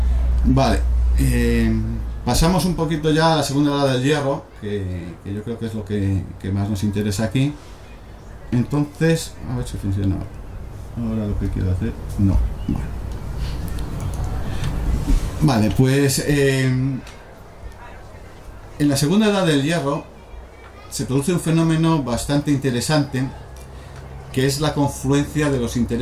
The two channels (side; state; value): both; identical; correlation 1.00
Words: Vale, pasamos un poquito ya a la segunda edad del hierro, que yo creo que es lo que más nos interesa aquí. Entonces, a ver si funciona ahora lo que quiero hacer. No, vale, pues en la segunda edad del hierro se produce un fenómeno bastante interesante, que es la confluencia de los